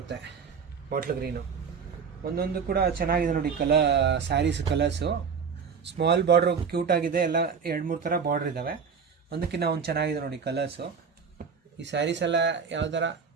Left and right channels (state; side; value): quieter; left; 6.2 dB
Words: ಬಾಟ್ಲ್ ಗ್ರೀನು. ಒಂದೊಂದು ಕೂಡ ಚೆನ್ನಾಗಿದೆ ನೋಡಿ saris colours. Small border cute ಆಗಿದೆ, ಎಲ್ಲ 2-3 ಥರ ಬಾರ್ಡ್ರ್ ಇದ್ದಾವೆ. ಒಂದಕ್ಕಿಂತ ಒಂದು ಚೆನ್ನಾಗಿದೆ ನೋಡಿ ಕಲರ್ಸು. ಈ ಸ್ಯಾರೀಸ್ ಎಲ್ಲ ಯಾವ್ದಾರ